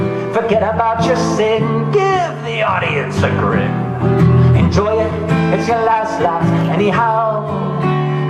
Forget about your sin, give the audience a grin. Enjoy it, it's your last laugh anyhow.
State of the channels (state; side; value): identical; both; correlation 1.00